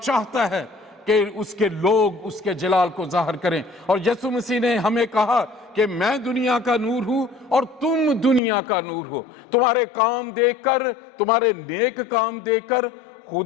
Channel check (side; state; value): right; drops out; at 8.4 s